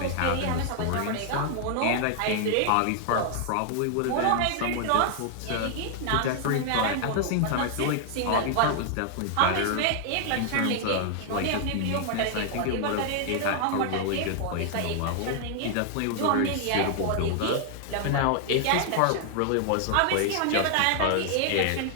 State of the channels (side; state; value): both; different; correlation 0.00